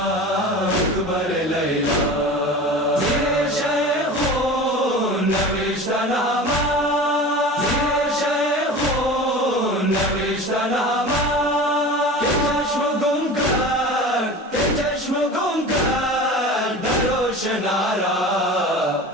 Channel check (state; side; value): normal; both; correlation 0.35